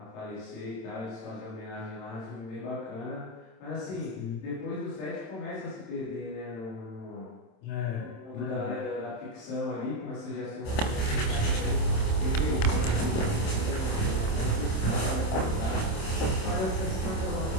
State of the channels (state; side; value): late; right; 27 ms